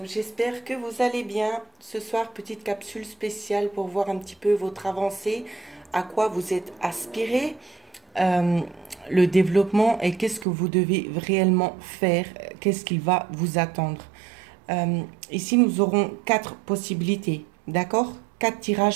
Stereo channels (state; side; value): drops out; left; at 10.5 s